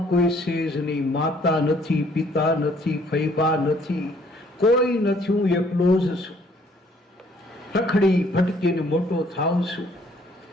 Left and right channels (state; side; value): normal; both; correlation 0.62